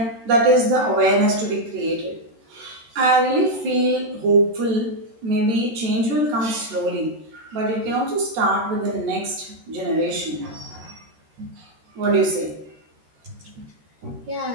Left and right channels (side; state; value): left; late; 13 ms